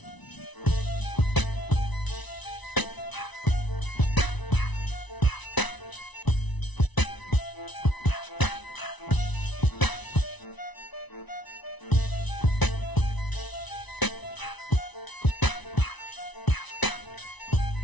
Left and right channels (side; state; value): right; late; 1.0 ms